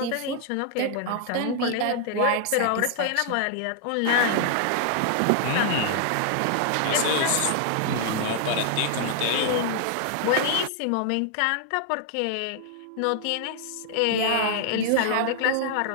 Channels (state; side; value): different; both; correlation 0.00